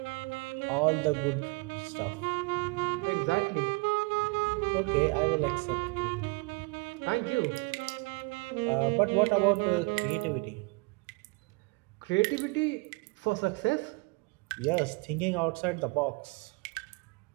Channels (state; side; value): quieter; left; 29.3 dB